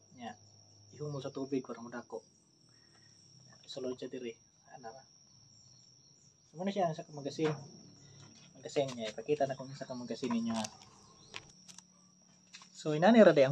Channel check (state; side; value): identical; both; correlation 1.00